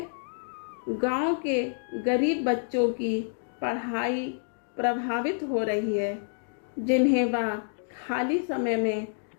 गांव के गरीब बच्चों की पढ़ाई प्रभावित हो रही है, जिन्हें वह खाली समय में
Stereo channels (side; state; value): right; silent; digital silence